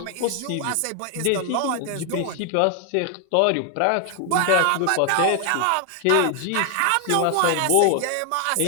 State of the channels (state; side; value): different; both; correlation 0.00